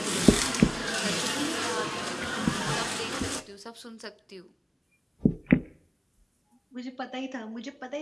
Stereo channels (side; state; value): both; identical; correlation 1.00